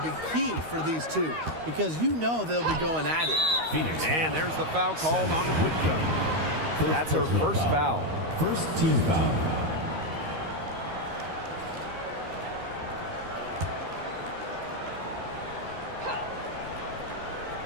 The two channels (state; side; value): late; left; 13 ms